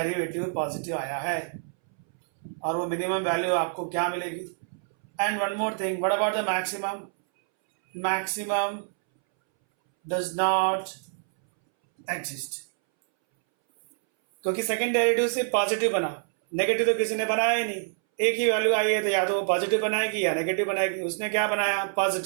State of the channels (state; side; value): silent; left; 60 dB below the other